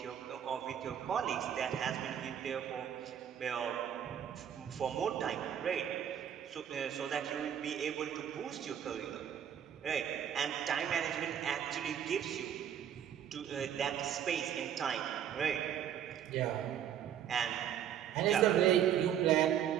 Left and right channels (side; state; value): left; quieter; 9.5 dB